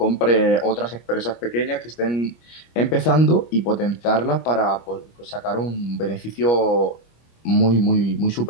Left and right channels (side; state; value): right; late; 25 ms